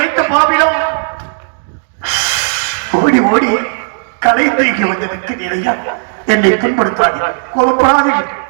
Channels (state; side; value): silent; left; digital silence